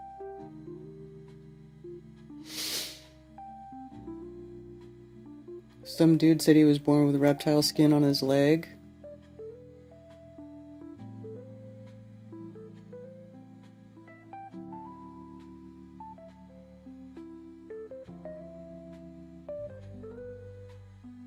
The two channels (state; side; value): identical; both; correlation 1.00